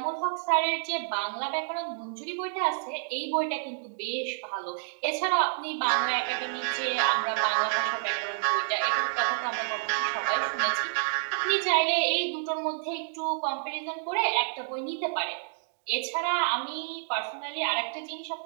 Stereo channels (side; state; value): left; silent; digital silence